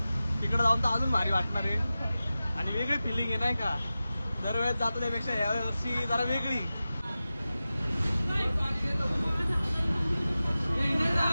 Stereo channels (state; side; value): inverted; both; correlation -0.95